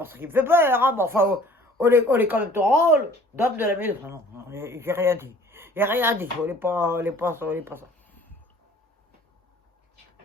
ça qui me fait peur, hein, mais enfin, on est quand même ton rôle, d'homme de la maison. Non, j'ai rien dit. J'ai rien dit, on n'est pas ça.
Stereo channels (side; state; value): both; normal; correlation 0.52